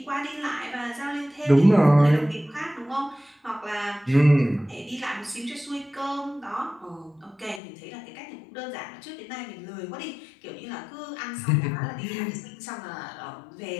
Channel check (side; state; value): right; drops out; at 7.6 s